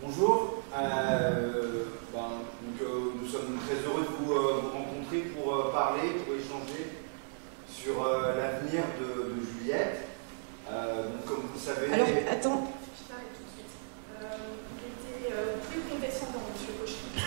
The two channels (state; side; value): silent; left; digital silence